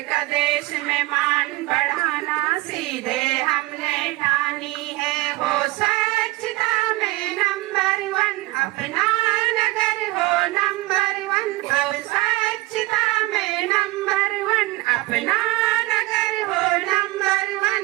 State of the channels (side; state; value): left; quieter; 20.6 dB